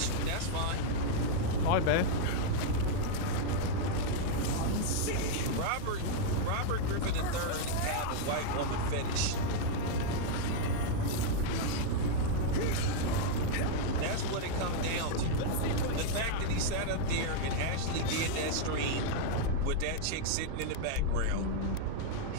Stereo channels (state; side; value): different; both; correlation 0.00